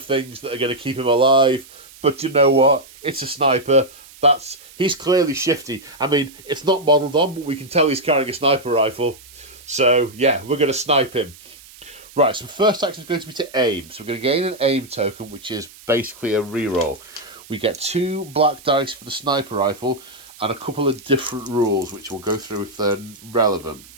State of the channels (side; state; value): right; noise; hiss, 21 dB below the sound